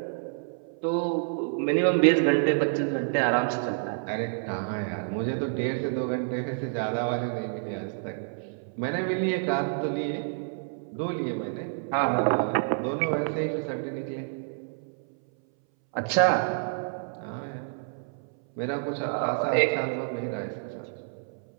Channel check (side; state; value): left; silent; 59 dB below the other